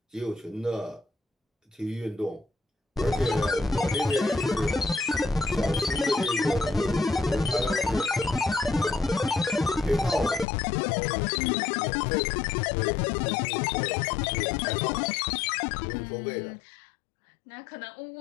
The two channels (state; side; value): drops out; right; at 10.5 s